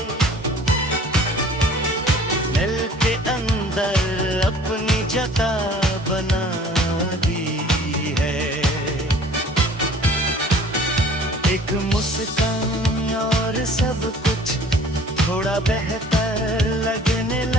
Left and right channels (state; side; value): normal; both; correlation 0.50